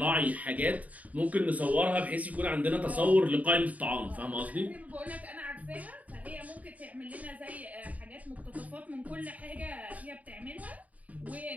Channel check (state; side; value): late; left; 0.072 ms